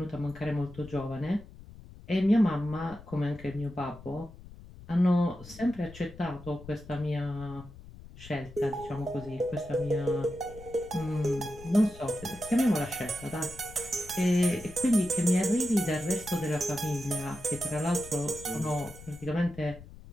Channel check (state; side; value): noise; left; rumble, 17 dB below the sound